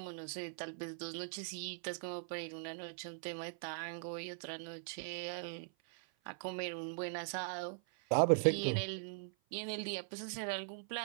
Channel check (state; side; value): silent; left; 51 dB below the other